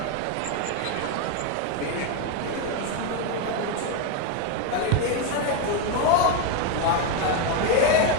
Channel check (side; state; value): both; different; correlation 0.02